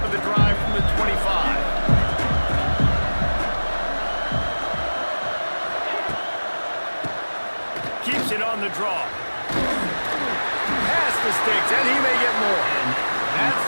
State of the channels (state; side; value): inverted; both; correlation -1.00